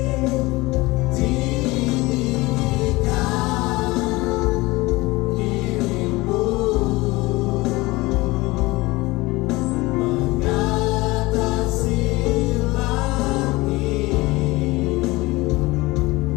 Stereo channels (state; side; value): quieter; right; 21.4 dB